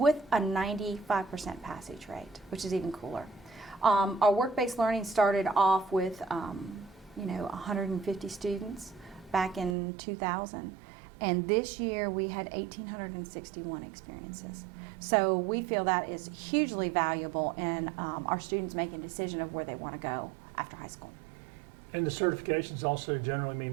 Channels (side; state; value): left; drops out; at 9.8 s